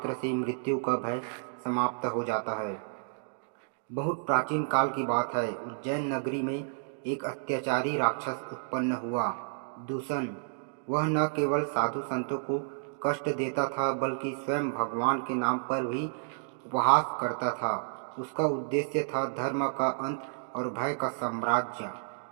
से मृत्यु का भय समाप्त हो जाता है। बहुत प्राचीन काल की बात है। उज्जैन नगरी में एक अत्याचारी राक्षस उत्पन्न हुआ, दूषण। वह न केवल साधु संतों को कष्ट देता था, बल्कि स्वयं भगवान के नाम पर भी उपहास करता था। उसका उद्देश्य था धर्म का अंत और भय का साम्राज्य।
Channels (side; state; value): left; silent; digital silence